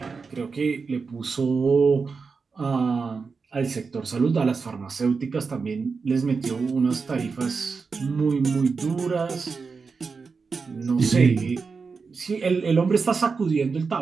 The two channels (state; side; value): quieter; left; 4.9 dB